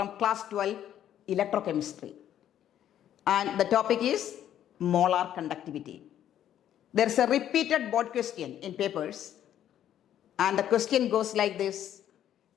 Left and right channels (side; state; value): right; quieter; 10.9 dB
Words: class 12 electrochemistry, and the topic is molar conductivity. There is a repeated board question in papers, and the question goes like this: